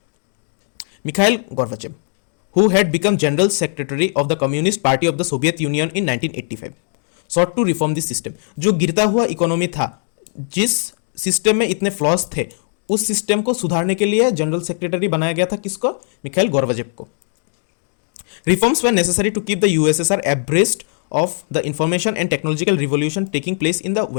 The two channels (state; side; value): silent; right; 65 dB below the other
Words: Mikhail Gorbachev, who had become general secretary of the Communist Party of the Soviet Union in 1985, sought to reform this system. जो गिरता हुआ इकोनॉमी था, जिस सिस्टम में इतने फ्लॉज थे, उस सिस्टम को सुधारने के लिए जनरल सेक्रेटरी बनाया गया था। किसको? मिखाइल गोर्बाचेव को। Reforms were necessary to keep the USSR abreast of the information and technological revolution taking place in the